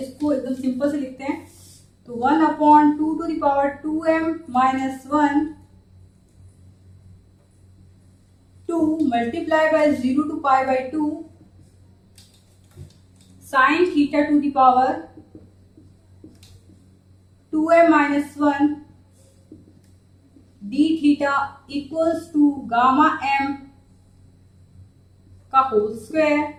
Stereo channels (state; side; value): identical; both; correlation 1.00